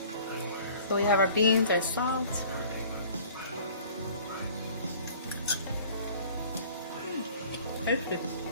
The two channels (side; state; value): both; inverted; correlation -0.50